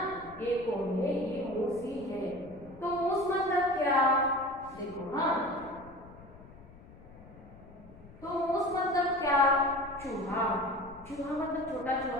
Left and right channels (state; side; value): noise; left; rumble, 20 dB below the sound